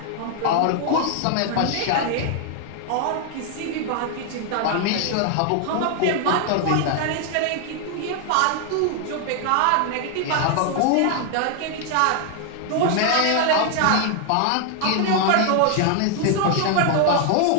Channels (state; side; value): different; both; correlation 0.00